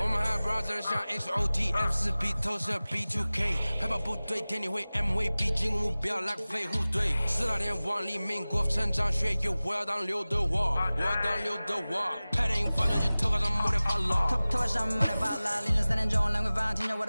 我们还 brother 像 XOT F4P 投射 B2K 海豹部队天地会 MVP 进攻目标来个飞虎队4大天王黎明国成长学院我要当刘德华我要当刘德华拍电影发传机头发上抹点发蜡头发上抹点发蜡凌晨3点钟兰桂坊听着我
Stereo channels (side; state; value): both; inverted; correlation -0.98